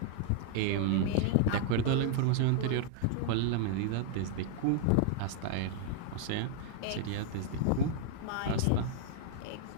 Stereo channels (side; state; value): both; different; correlation 0.00